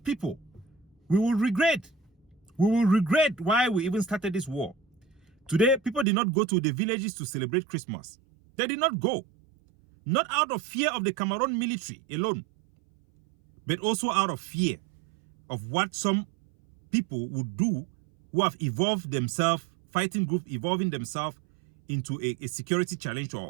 people, we will regret. We will regret why we even started this war. Today, people did not go to the villages to celebrate Christmas. They did not go. Not out of fear of the Cameroon military alone, but also out of fear of what some people would do who have evolved themselves, fighting groups evolving themselves into a security challenge to our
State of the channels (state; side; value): drops out; left; at 6.1 s